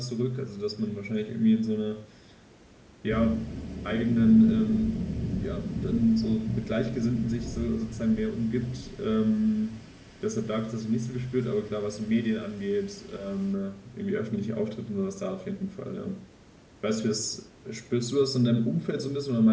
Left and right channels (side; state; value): both; identical; correlation 1.00